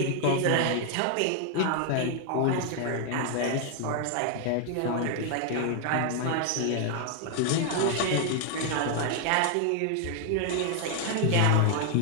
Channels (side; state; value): both; different; correlation 0.00